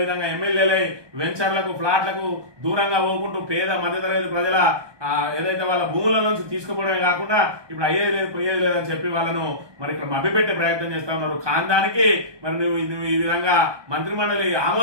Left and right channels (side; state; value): left; late; 1.2 ms